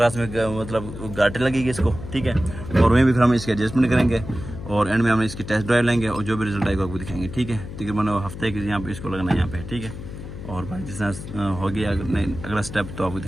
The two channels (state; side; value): noise; left; hum, 10 dB below the sound